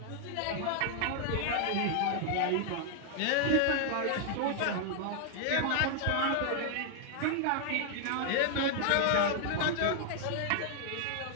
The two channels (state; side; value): different; both; correlation 0.00